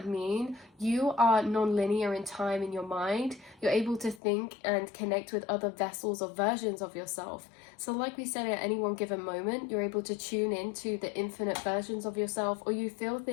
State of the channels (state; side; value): drops out; right; at 4.2 s